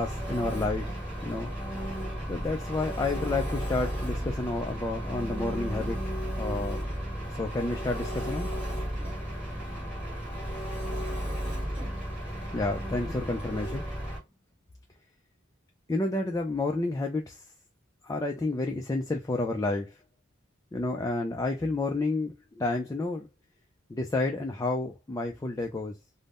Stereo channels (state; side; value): normal; both; correlation 0.72